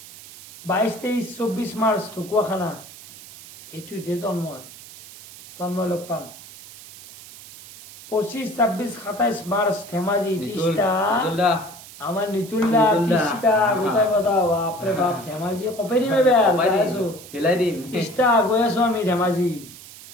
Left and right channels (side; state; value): right; noise; hiss, 17 dB below the sound